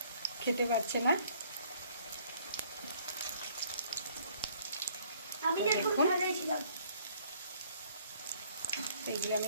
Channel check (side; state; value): both; inverted; correlation -0.61